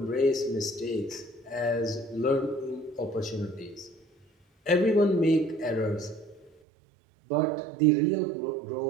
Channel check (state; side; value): drops out; left; at 6.5 s